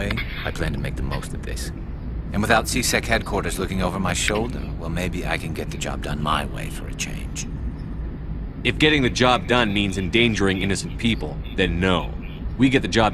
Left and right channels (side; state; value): both; identical; correlation 1.00